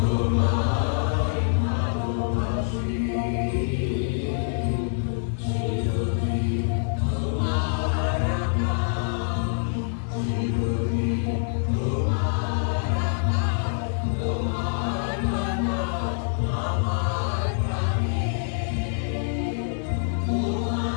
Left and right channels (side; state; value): right; silent; digital silence